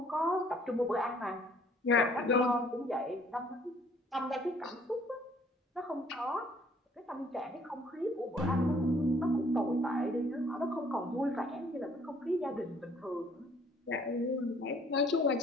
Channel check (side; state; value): both; normal; correlation 0.60